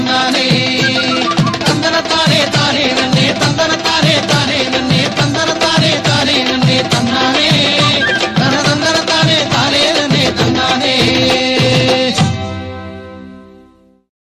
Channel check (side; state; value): both; identical; correlation 1.00